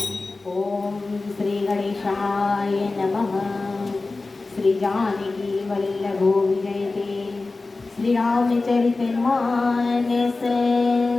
ओम श्री गणेशाय नमः। श्री जानकी वल्लभो विजयते श्री रामचरित मानस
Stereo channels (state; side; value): quieter; right; 3.5 dB